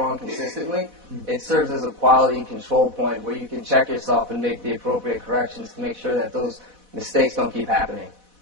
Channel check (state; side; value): late; left; 4.1 ms